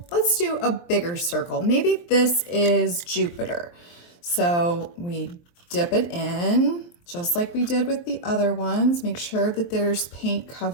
a bigger circle. Maybe this is Jupiter. So we dip it in just like we did with the other ones. Make sure that there's paint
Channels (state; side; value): late; right; 23 ms